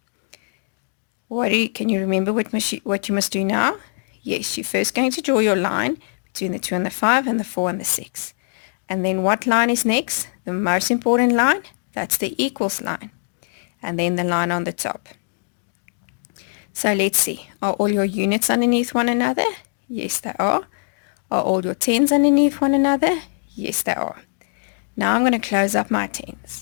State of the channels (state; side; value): silent; right; digital silence